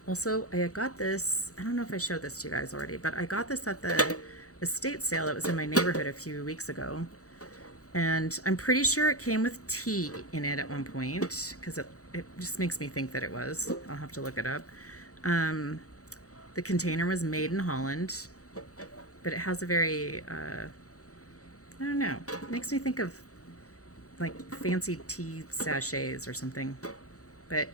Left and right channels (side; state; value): right; late; 0.66 ms